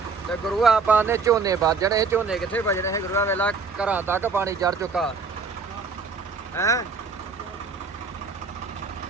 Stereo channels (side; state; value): left; quieter; 4.8 dB